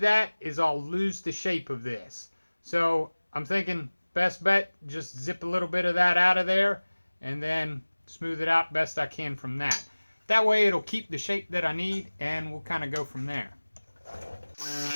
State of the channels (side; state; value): both; inverted; correlation -1.00